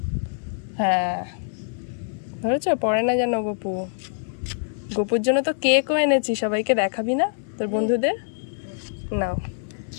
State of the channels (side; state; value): right; silent; digital silence